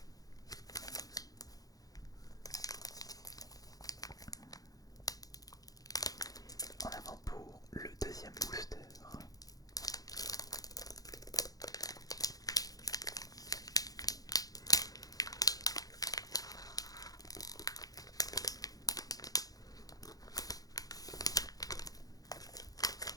En avant pour le deuxième booster.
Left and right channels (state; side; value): late; right; 0.18 ms